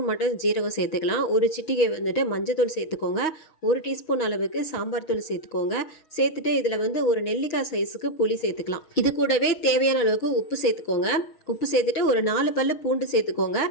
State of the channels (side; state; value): right; late; 6.3 ms